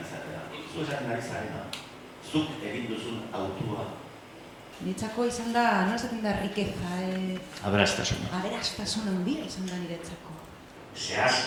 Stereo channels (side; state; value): both; identical; correlation 1.00